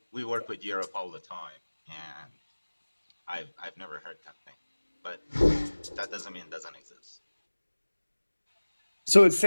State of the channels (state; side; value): inverted; both; correlation -1.00